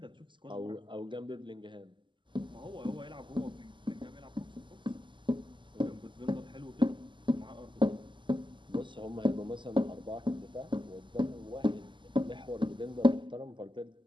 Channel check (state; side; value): late; left; 0.24 ms